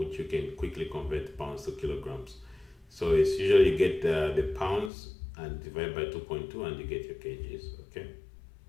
you can quickly convert pounds to kilograms. So it's usually you get the pounds and divide by 2.2 and you get your kgs, okay?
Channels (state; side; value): drops out; right; at 4.9 s